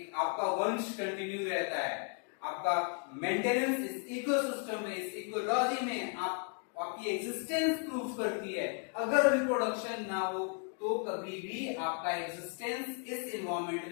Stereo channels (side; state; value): right; quieter; 38.7 dB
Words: आपका वंश कंटिन्यू रहता है, आपका मेंटेनेंस इस इकोसिस्टम में, इस इकोलॉजी में आपकी एग्जिस्टेंस प्रूव करती है. अगर रिप्रोडक्शन ना हो तो कभी भी आपका एग्जिस्टेंस इस इन्वायरमेंट